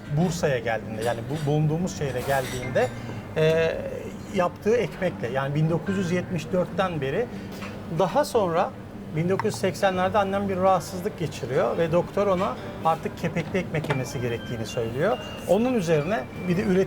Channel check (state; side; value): identical; both; correlation 1.00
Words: Bursa'ya geldiğinde, yani bu bulunduğumuz şehre geldiğinde yaptığı ekmekle, yani 1974'ten beri. Daha sonra 1980'lerde annem bir rahatsızlık geçiriyor ve doktor ona artık kepekli ekmek yemesi gerektiğini söylüyor. Onun üzerine bir de